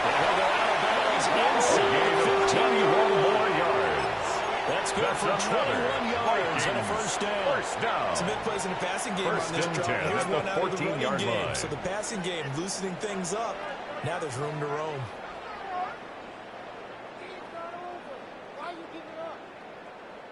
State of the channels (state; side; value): identical; both; correlation 1.00